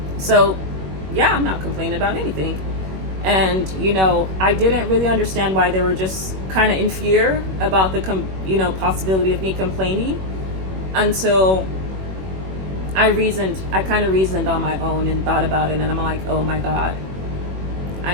So yeah, I'm not complaining about anything. And, you know, I didn't really understand why they were just kind of in fear about the possibility of me complaining, until I kind of reasoned on my own and thought about it, and I'm like, oh my God,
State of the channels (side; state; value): left; late; 21 ms